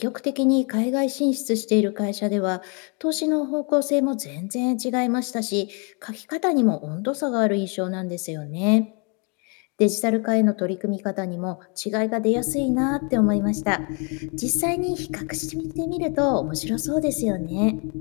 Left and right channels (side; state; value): right; quieter; 35.4 dB